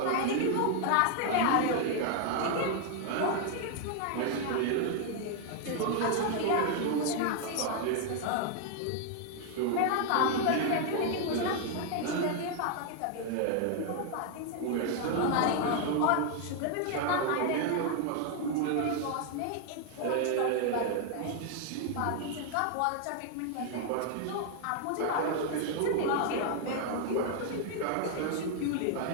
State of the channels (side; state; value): both; different; correlation 0.00